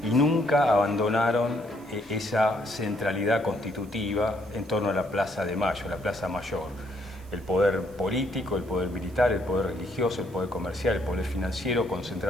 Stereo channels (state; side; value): noise; right; hiss, 27 dB below the sound